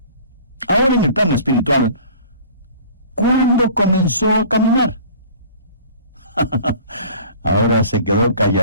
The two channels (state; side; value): inverted; both; correlation -0.46